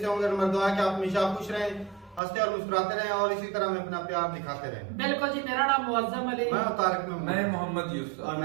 होंगे। नंबर 2 है कि आप हमेशा खुश रहें, हंसते और मुस्कुराते रहें और इसी तरह में अपना प्यार दिखाते रहें। बिल्कुल जी, मेरा नाम मुअज्जम अली, मैं तारिक में, मैं मोहम्मद यूसुफ और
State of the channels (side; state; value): left; drops out; at 2.2 s